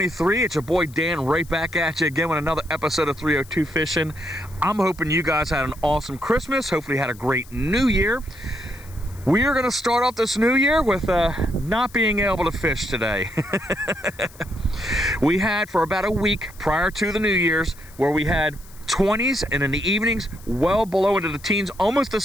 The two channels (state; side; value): noise; left; hiss, 23 dB below the sound